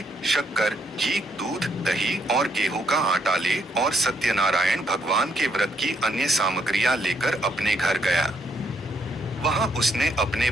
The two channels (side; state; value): both; normal; correlation 0.73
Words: शक्कर, घी, दूध, दही और गेहूं का आटा ले और सत्यनारायण भगवान के व्रत की अन्य सामग्रियां लेकर अपने घर गया। वहां उसने अपने